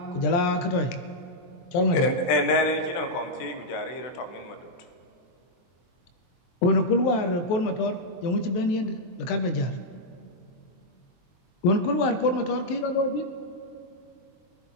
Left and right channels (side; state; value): right; late; 23 ms